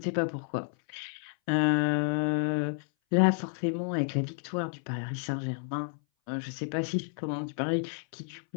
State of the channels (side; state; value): right; silent; 57 dB below the other